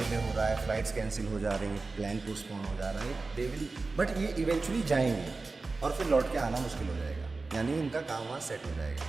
हो रहा है, फ्लाइट्स कैंसिल हो जा रही हैं, प्लान पोस्टपोन हो जा रहा है, दे विल, बट ये इवेंचुअली जाएंगे और फिर लौट के आना मुश्किल हो जाएगा, यानी इनका काम वहाँ सेट हो जाएगा।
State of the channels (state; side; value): quieter; left; 3.8 dB